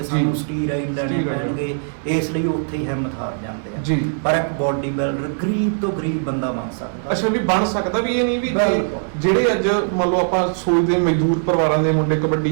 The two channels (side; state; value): left; silent; digital silence